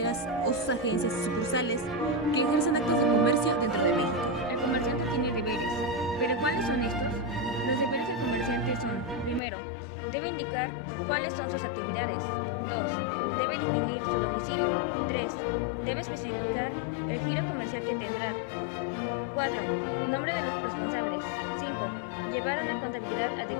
o sus agencias y sucursales que ejercen actos de comercio dentro de México. El comerciante tiene deberes, pero ¿cuáles son estos? Los deberes del comerciante son: primero, debe indicar cuáles son sus actividades; 2, debe definir su domicilio; 3, debe especificar el giro comercial que tendrá; 4, nombre de los responsables; 5, llevar una contabilidad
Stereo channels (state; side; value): drops out; right; at 9.4 s